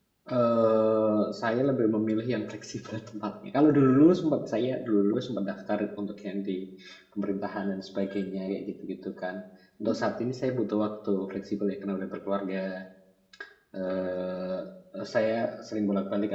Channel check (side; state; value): both; identical; correlation 1.00